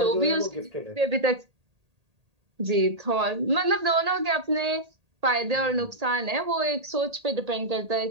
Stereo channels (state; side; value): late; left; 1.8 ms